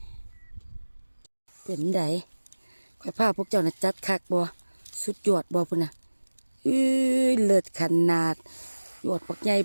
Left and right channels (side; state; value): both; inverted; correlation -1.00